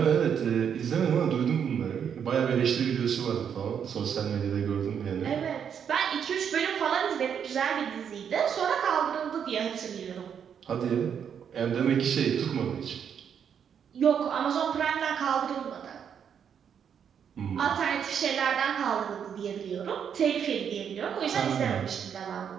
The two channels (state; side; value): quieter; left; 7.9 dB